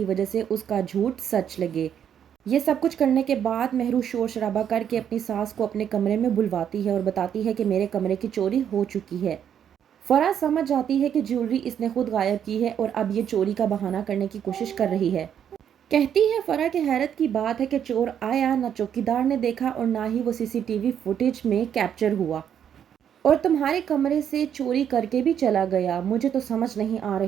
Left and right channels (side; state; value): left; quieter; 9.0 dB